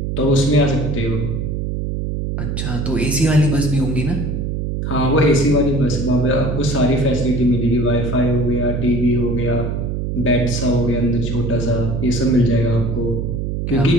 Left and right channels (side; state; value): right; noise; hum, 2 dB below the sound